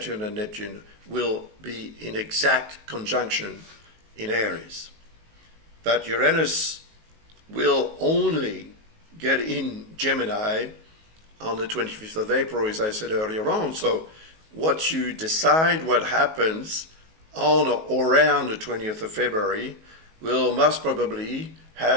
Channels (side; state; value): left; late; 19 ms